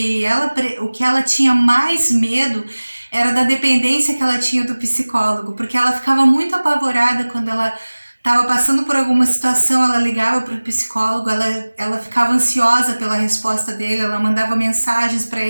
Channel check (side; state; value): both; inverted; correlation -1.00